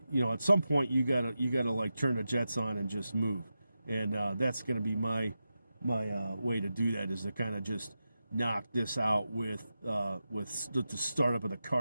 at some point you gotta like turn the jets on and just move, and that's gonna be my way to do that, is to kind of just knock this out with the startup of the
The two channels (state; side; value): inverted; both; correlation -0.91